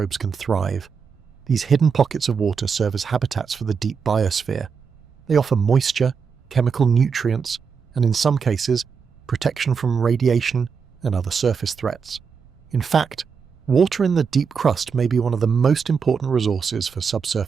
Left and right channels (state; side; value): quieter; left; 6.0 dB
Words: can thrive. These hidden pockets of water serve as habitats for the deep biosphere. They offer moisture, chemical nutrients, and in some cases, protection from radiation and other surface threats. In fact, water in the deep crust may be one of the most important resources for